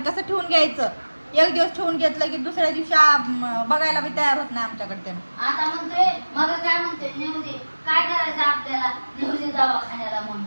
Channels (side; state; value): both; inverted; correlation -1.00